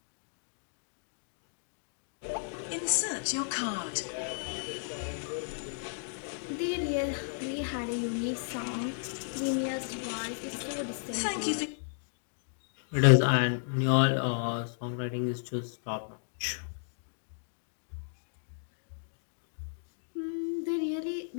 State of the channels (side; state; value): right; silent; digital silence